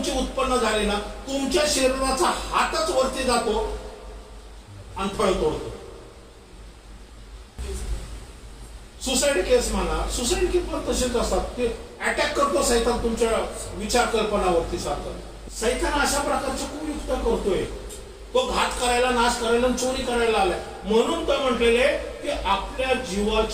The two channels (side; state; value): both; identical; correlation 1.00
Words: उत्पन्न झाली ना, तुमच्या शरीराचा हातच वरती जातो आणि फळ तोडतो. सुसाईड केस म्हणा, सुसाईड केस पण तसेच असतात, ते अटॅक करतो सैतान तुमच्या विचार कल्पनावरती सारखं. सैतान अशा प्रकारचे कुयुक्त करतोय, तो घात करायला, नाश करायला, चोरी करायला आलाय. म्हणून तर म्हटलेले की आपल्या